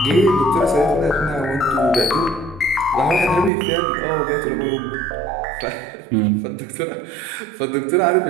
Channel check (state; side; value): drops out; left; at 3.5 s